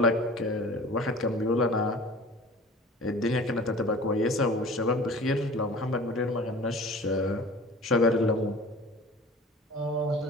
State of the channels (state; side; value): normal; both; correlation 0.42